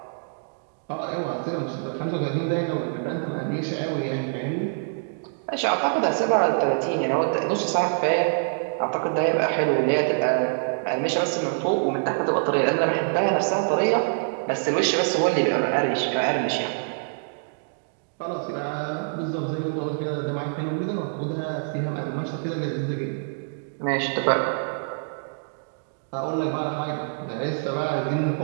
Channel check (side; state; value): left; silent; digital silence